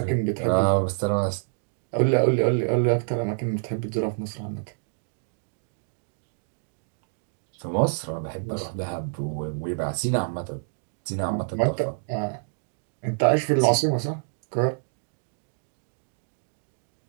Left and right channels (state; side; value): silent; left; digital silence